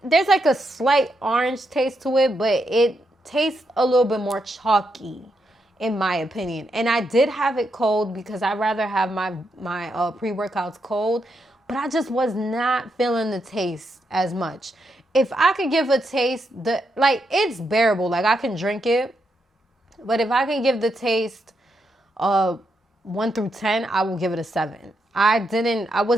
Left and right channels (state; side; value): normal; both; correlation 0.82